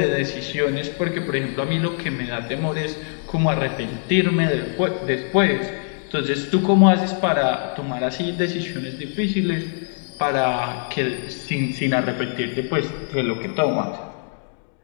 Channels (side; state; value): right; silent; 64 dB below the other